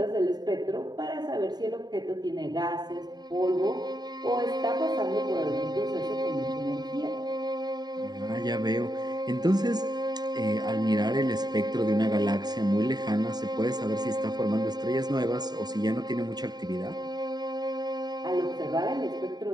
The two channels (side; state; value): left; late; 0.20 ms